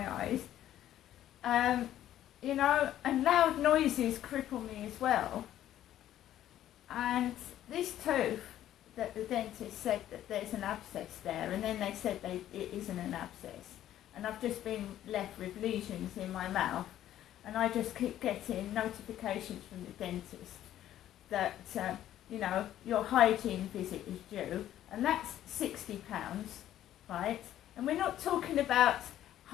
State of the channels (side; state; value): right; quieter; 12.2 dB